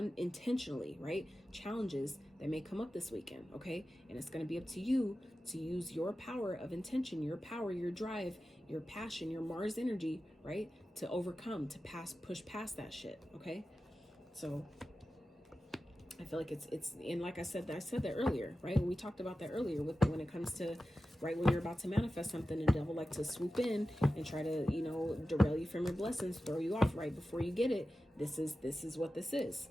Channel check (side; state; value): both; normal; correlation 0.93